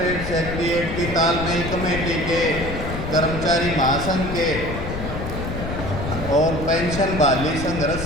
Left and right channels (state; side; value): noise; left; rumble, 6 dB below the sound